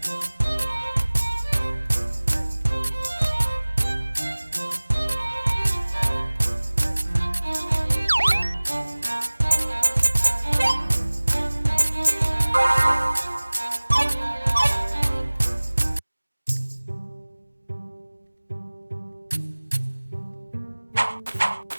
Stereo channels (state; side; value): inverted; both; correlation -1.00